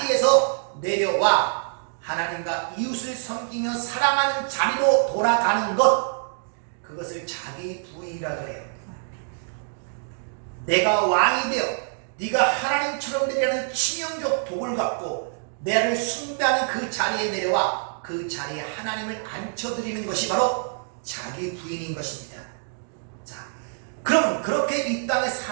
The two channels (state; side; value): silent; left; digital silence